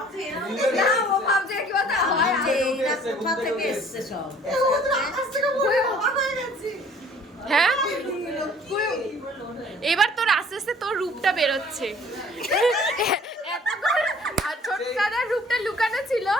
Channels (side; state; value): both; normal; correlation 0.53